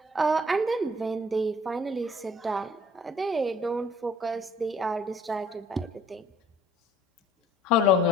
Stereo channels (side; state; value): both; normal; correlation 0.56